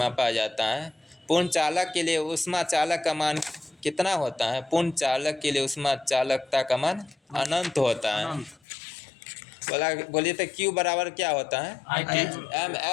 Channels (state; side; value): drops out; right; at 8.6 s